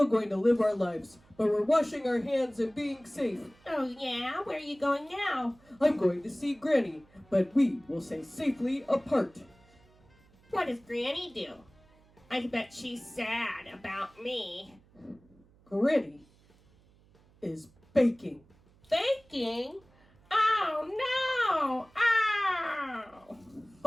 going to live our lives, but we're washing our hands and being safe. Oh, yeah? Where are you going now? I'm going to see Granny, but we will stay safely apart. What does Granny do? I bet she's sad about me. Granny is baking. Baking? Oh, no! Ow!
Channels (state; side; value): noise; right; hum, 29 dB below the sound